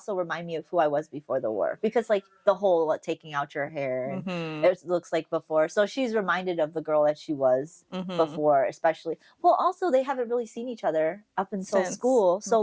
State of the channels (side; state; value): both; identical; correlation 1.00